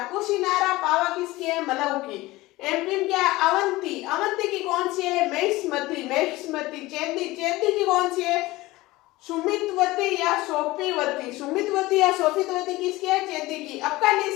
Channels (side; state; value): right; quieter; 19.4 dB